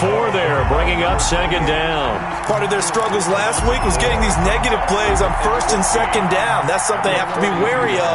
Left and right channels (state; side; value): identical; both; correlation 1.00